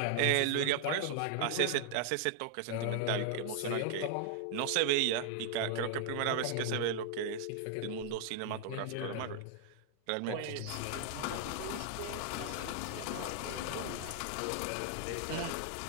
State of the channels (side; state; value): both; different; correlation 0.00